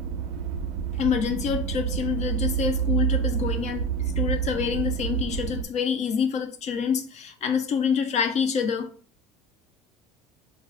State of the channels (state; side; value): normal; both; correlation 0.30